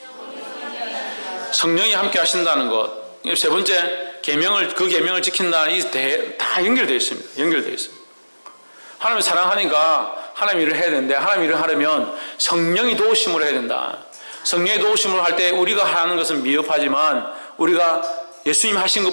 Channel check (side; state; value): both; inverted; correlation -1.00